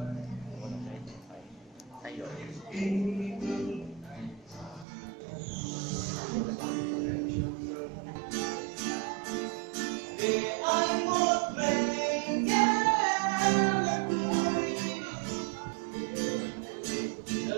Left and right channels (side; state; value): left; drops out; at 4.9 s